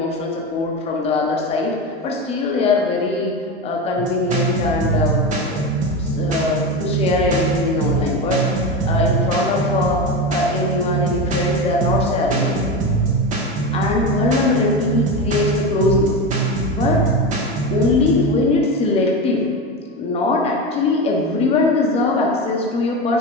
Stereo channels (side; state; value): both; normal; correlation 0.20